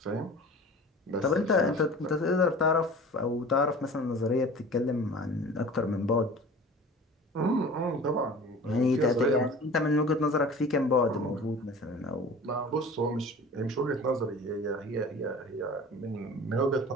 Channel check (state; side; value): normal; both; correlation 0.40